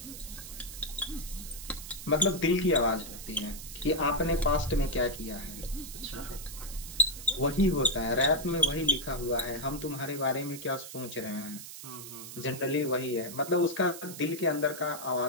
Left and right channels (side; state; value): right; noise; hiss, 11 dB below the sound